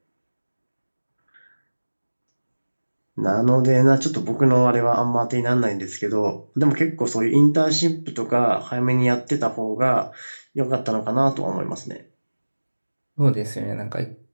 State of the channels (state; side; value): inverted; both; correlation -1.00